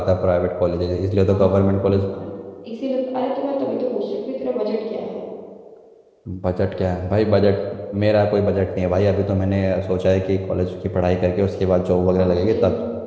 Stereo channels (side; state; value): both; identical; correlation 1.00